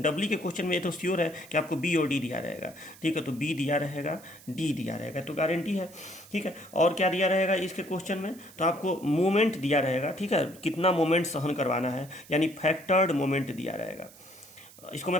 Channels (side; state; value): right; noise; hiss, 21 dB below the sound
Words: डब्ली के क्वेश्चन में ये तो श्योर है कि आपको बी और डी दिया रहेगा। ठीक है, तो बी दिया रहेगा, डी दिया रहेगा, तो गारंटी है। ठीक है, और क्या दिया रहेगा इसके क्वेश्चन में, तो आपको मोमेंट दिया रहेगा। ठीक है, कितना मोमेंट सहन करवाना है, यानी फैक्टर्ड मोमेंट दिया रहेगा। इसको मैं